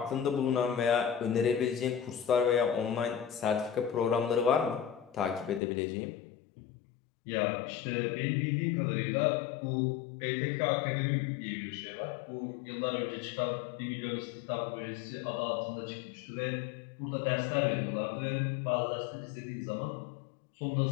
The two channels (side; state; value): right; drops out; at 5.6 s